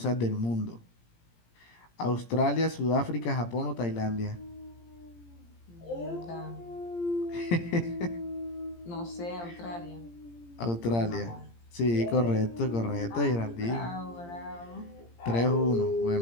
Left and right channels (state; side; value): late; right; 17 ms